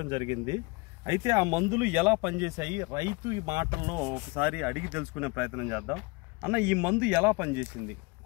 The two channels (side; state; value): right; quieter; 26.9 dB